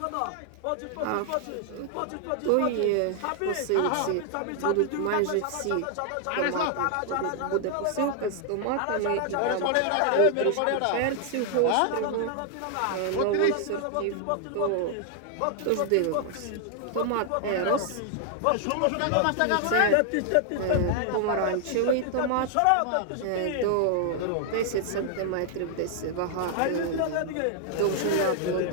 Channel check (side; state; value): both; different; correlation 0.00